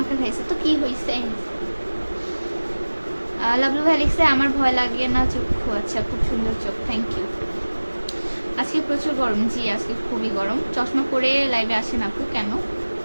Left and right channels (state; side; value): inverted; both; correlation -1.00